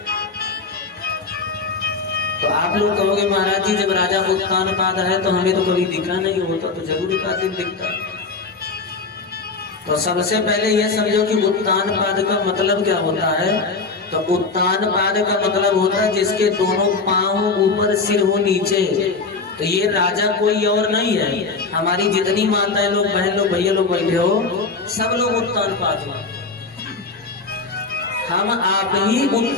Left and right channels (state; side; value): quieter; right; 4.2 dB